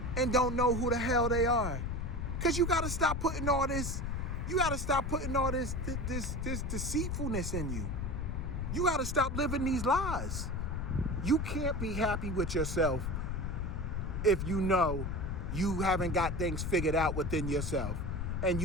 and don't know who the hell they are. Because you got to stop putting all this, this deceitfulness in you. You got to stop living these lies. You can't be happy with yourself if you know you haven't got things figured out within yourself and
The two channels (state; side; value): noise; left; rumble, 2 dB below the sound